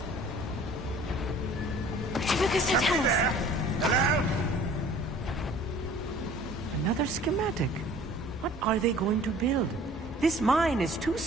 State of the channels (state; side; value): normal; both; correlation 0.49